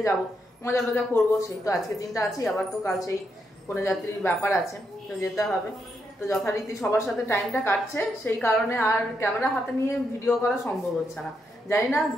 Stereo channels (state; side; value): normal; both; correlation 0.81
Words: যাব, মজা টজা করবো। সেই তো আজকে দিনটা আছি, আবার তো কাল সেই কনে যাত্রীর ব্যাপার আছে, তো যেতে হবে। তো যথারীতি সবার সাথে টাইমটা কাটছে, সেই কারণে আর ক্যামেরা হাতে নিয়ে ভিডিও করা সম্ভব হচ্ছে না। জানি না